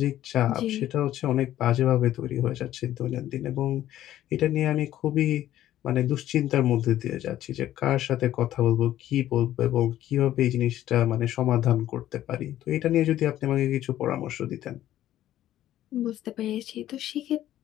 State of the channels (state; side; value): quieter; right; 12.9 dB